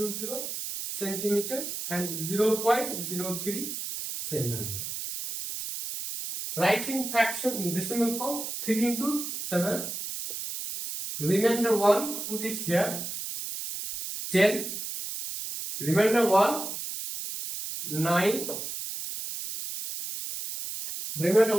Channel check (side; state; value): right; noise; hiss, 6 dB below the sound